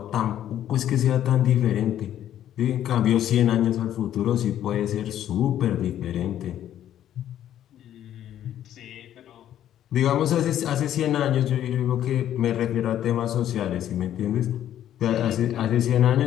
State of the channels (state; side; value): quieter; right; 11.3 dB